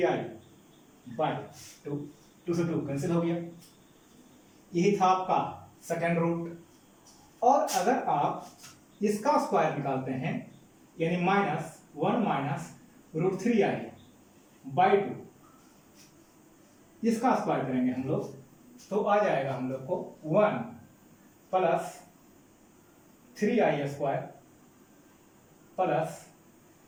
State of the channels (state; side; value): identical; both; correlation 1.00